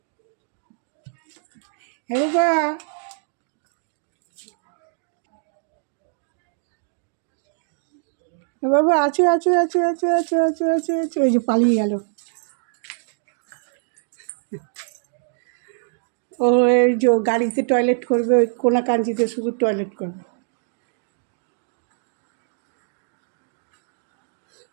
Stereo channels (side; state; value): left; silent; digital silence